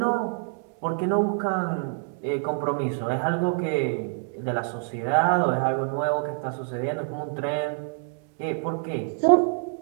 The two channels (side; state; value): left; silent; 61 dB below the other